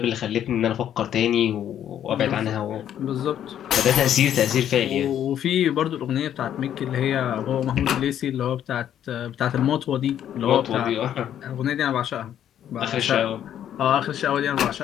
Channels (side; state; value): right; quieter; 10.3 dB